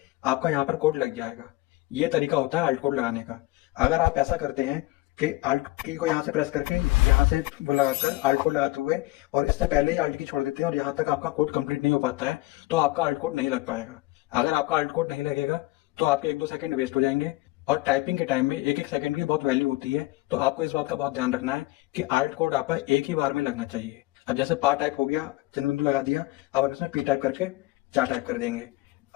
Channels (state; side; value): quieter; right; 19.9 dB